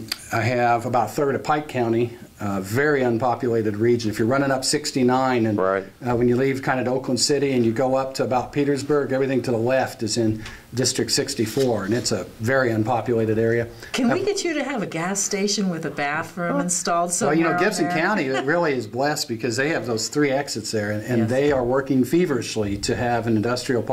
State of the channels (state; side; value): identical; both; correlation 1.00